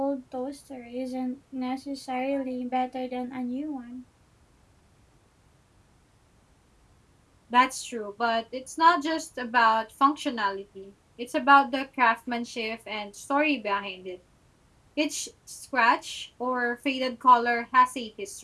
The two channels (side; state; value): both; identical; correlation 1.00